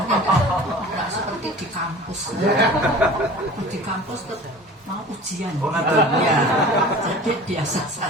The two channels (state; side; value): normal; both; correlation 0.41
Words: seperti di kampus. Di kampus tuh mau ujian gitu. Ya, jadi biasa